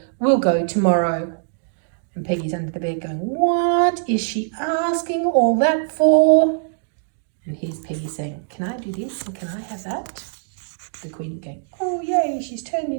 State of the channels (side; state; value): left; silent; digital silence